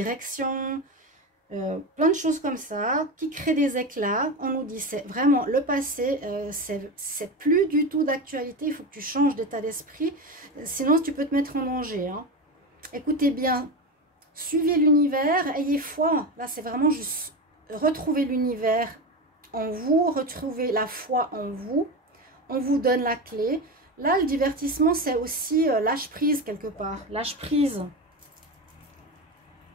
Plein de choses comme ça qui créent des éclats. On nous dit c'est vraiment le passé, c'est plus du tout d'actualité, il faut que tu changes d'état d'esprit, sinon tu peux te mettre en danger. Hein. Écoutez bien, suivez l'univers, ayez foi. Là c'est vraiment juste retrouver l'univers en vous, retrouver la foi en vous. On vous donne la clé. Là le divertissement c'est aussi lâche prise quelque part, lâche prise.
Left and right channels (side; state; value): both; normal; correlation 0.20